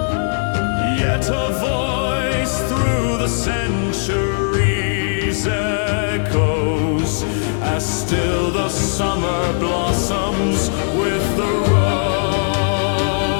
Yet a voice through the centuries echoes, as still the summer blossoms with the rose.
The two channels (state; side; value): silent; right; digital silence